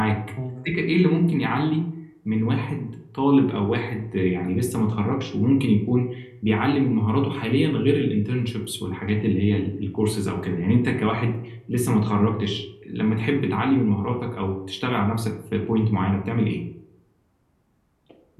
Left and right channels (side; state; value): both; identical; correlation 1.00